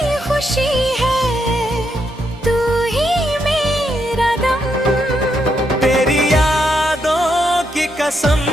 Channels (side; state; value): both; normal; correlation 0.79